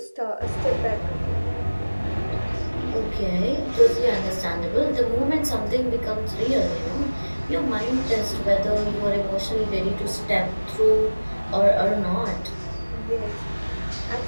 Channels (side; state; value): both; inverted; correlation -1.00